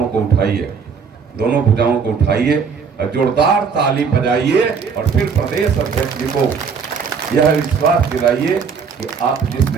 को उठाइए, दोनों भुजाओं को उठाइए और जोरदार ताली बजाइए और फिर प्रदेश अध्यक्ष जी को यह विश्वास दिलाइए कि आप जिस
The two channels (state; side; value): quieter; left; 5.9 dB